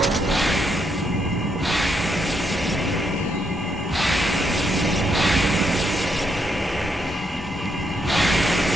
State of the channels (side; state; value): both; normal; correlation 0.77